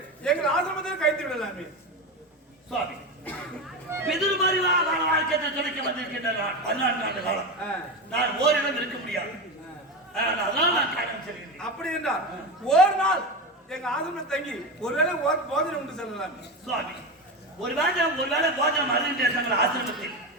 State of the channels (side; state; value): both; normal; correlation 0.19